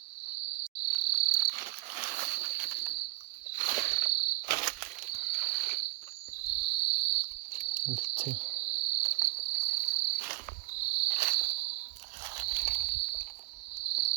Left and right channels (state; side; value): quieter; left; 26.9 dB